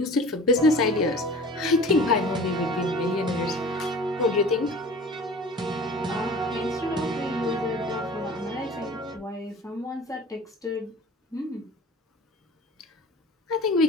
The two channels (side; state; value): both; normal; correlation 0.42